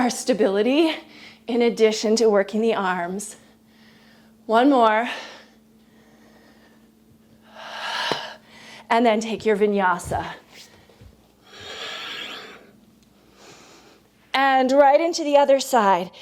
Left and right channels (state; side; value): identical; both; correlation 1.00